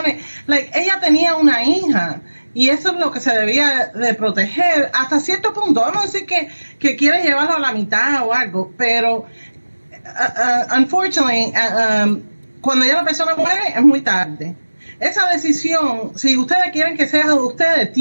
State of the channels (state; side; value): inverted; both; correlation -1.00